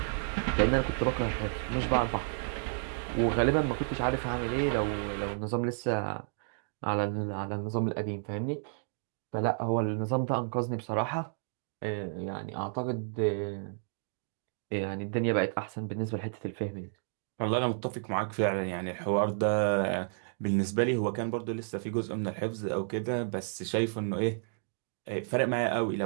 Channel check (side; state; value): left; silent; digital silence